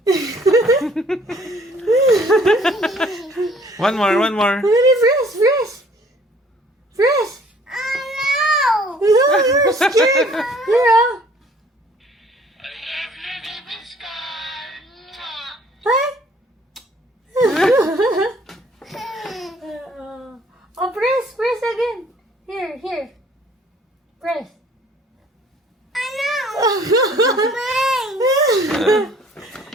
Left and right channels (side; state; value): both; normal; correlation 0.57